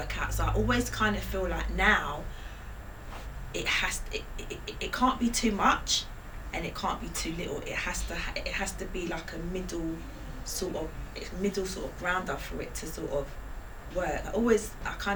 out. So I always kind of feel like now it can't be too much, and it can't be too little. It has to be like a middle sort of grounder for it to sort of work. I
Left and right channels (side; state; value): both; identical; correlation 1.00